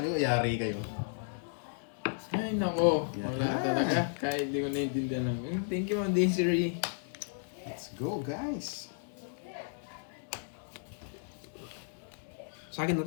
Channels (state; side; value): silent; right; digital silence